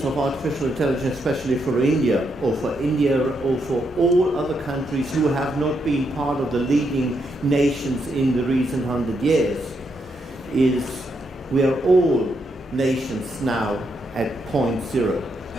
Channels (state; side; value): normal; both; correlation 0.79